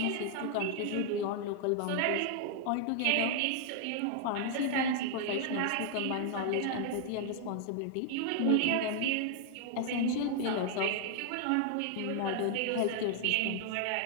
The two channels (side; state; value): both; different; correlation 0.00